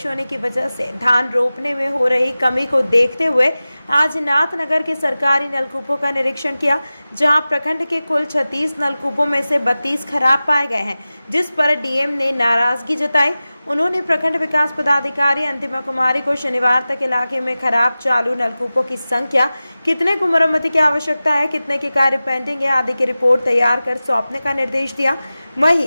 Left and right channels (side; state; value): both; inverted; correlation -0.96